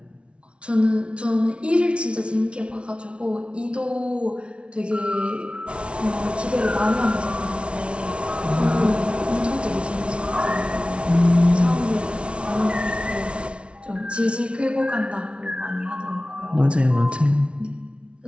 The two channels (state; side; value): late; left; 0.059 ms